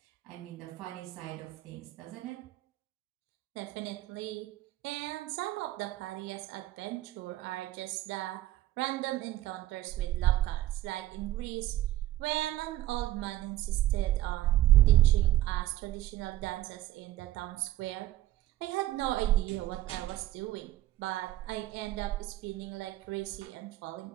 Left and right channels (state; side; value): quieter; left; 14.9 dB